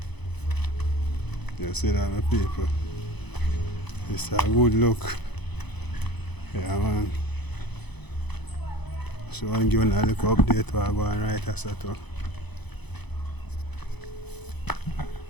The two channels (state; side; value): late; right; 0.99 ms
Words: You see that, my people? It's a good look. Yeah man. So I'm giving a little update while I go and write a set up.